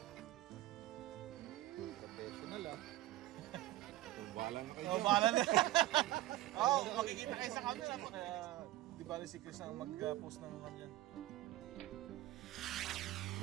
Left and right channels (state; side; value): quieter; left; 16.1 dB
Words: Professional ah. Bahala na kayo. Oh, bahala na. Oh, makikita kayo sa camera mo. Kaya di bali si Chris ang mag-post ng kanyan.